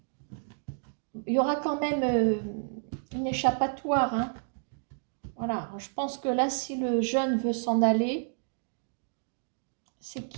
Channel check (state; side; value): silent; left; 58 dB below the other